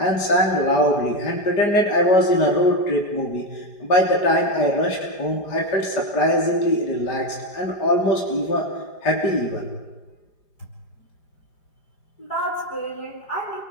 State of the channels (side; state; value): right; late; 4.9 ms